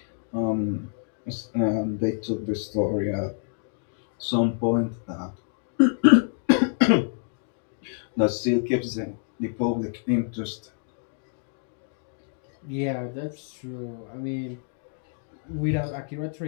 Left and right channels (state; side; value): silent; right; digital silence